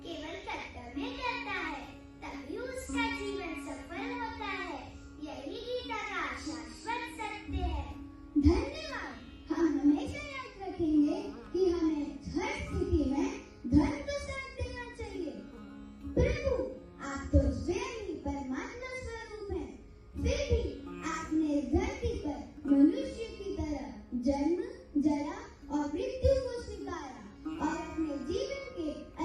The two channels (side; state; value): both; identical; correlation 1.00